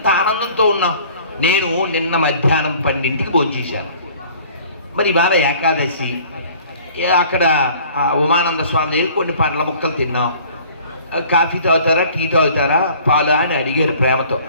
ఆనందంతో ఉన్నాం. నేను నిన్న మధ్యాహ్నం 12ంటికి భోంచేశాను. మరి ఇవాళ ఏకాదశి, అక్కడ ఉమానంద స్వామి దగ్గర కొన్ని పండ్ల ముక్కలు తిన్నాం. కాఫీ తాగుతారా, టీ తాగుతారా, పాలు అని అడిగారు ప్రేమతో.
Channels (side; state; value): both; inverted; correlation -0.51